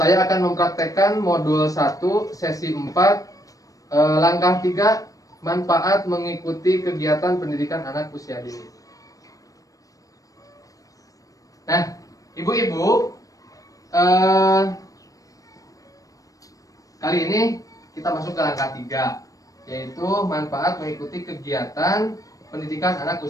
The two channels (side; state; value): right; late; 0.16 ms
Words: akan mempraktekkan modul 1 sesi 4 langkah 3 manfaat mengikuti kegiatan pendidikan anak usia dini. Nah, ibu-ibu, kali ini kita masuk ke langkah 3, yaitu manfaat mengikuti kegiatan pendidikan anak